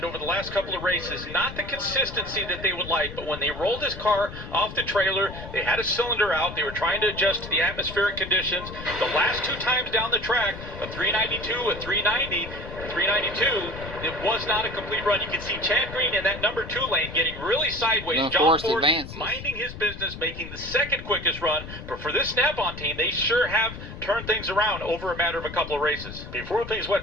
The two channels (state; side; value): noise; left; rumble, 11 dB below the sound